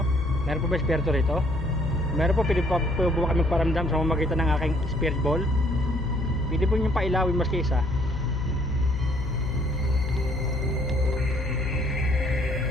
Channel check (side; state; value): left; noise; hum, 6 dB below the sound